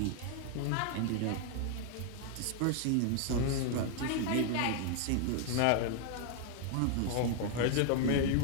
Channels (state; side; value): different; both; correlation 0.00